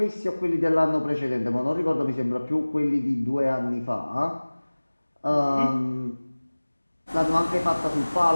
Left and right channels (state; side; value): inverted; both; correlation -1.00